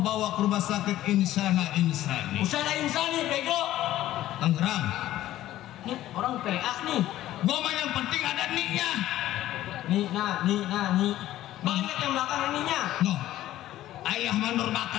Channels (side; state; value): right; quieter; 14.1 dB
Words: ke rumah sakit Insana Insani. Usana Insani, bego. Tangerang. Nih orang PA nih. Gua mah yang penting ada niknya. Nih. Banyak yang belakang ininya. No. Ayah mandor